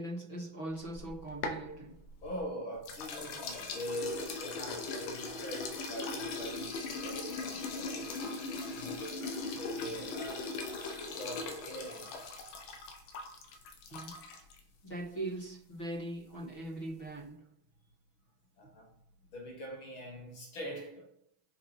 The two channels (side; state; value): right; late; 6.1 ms